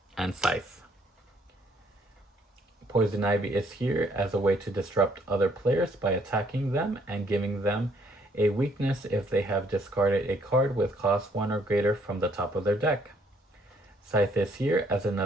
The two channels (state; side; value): normal; both; correlation 0.66